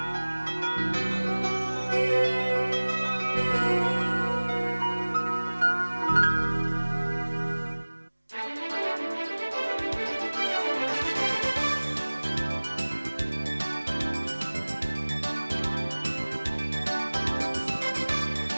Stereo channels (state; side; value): inverted; both; correlation -1.00